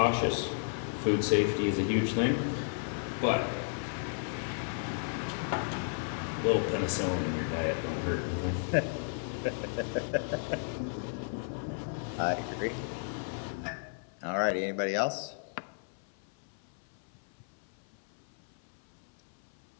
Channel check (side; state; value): right; silent; 55 dB below the other